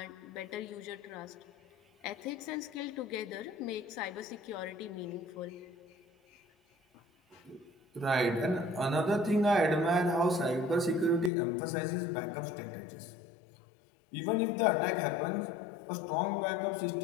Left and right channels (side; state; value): right; drops out; at 11.3 s